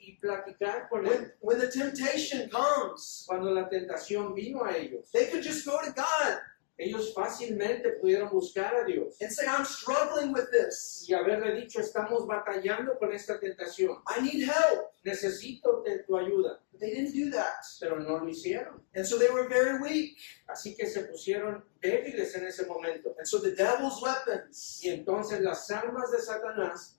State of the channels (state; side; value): silent; right; digital silence